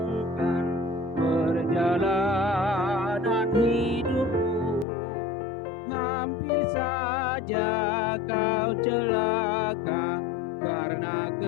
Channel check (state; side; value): drops out; right; at 4.9 s